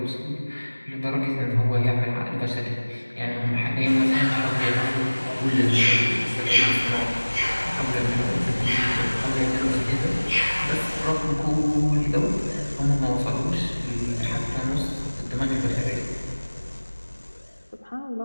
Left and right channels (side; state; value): both; inverted; correlation -1.00